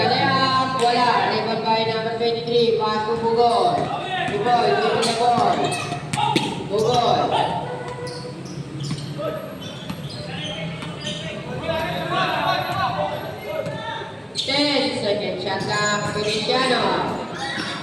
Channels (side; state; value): both; identical; correlation 1.00